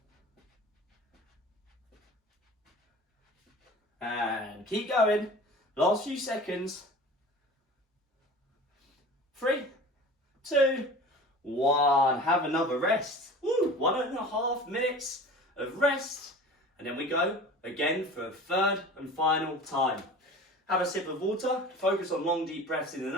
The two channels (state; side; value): normal; both; correlation 0.39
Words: And keep going. Last few seconds. 3, 2, 1. Have another rest. Woo! 1.5 minutes of rest. And then we go again for a third and final time. Have a sip of water. Focus on long, deep breaths in the